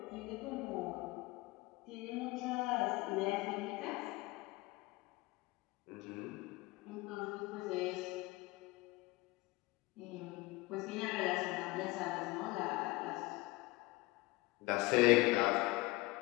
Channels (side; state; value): right; quieter; 21.7 dB